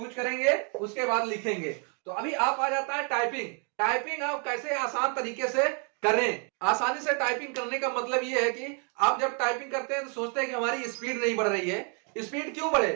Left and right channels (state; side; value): quieter; left; 39.5 dB